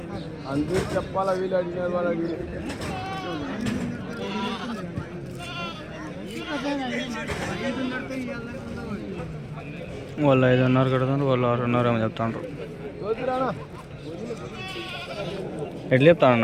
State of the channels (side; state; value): both; identical; correlation 1.00